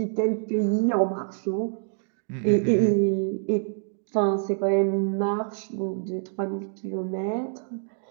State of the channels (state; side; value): silent; left; 58 dB below the other